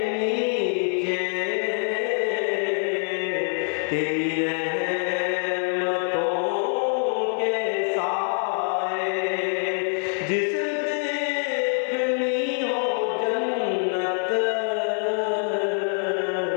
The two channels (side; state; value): right; silent; 55 dB below the other